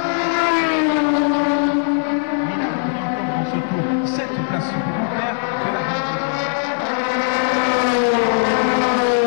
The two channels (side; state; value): right; silent; digital silence